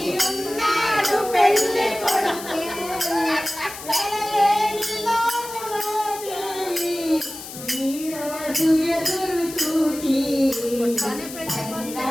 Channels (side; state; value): left; noise; hiss, 12 dB below the sound